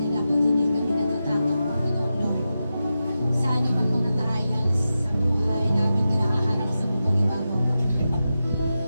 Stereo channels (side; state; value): both; inverted; correlation -0.91